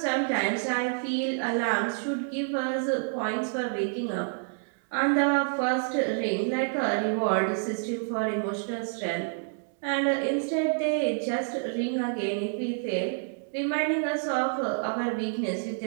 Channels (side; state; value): left; silent; digital silence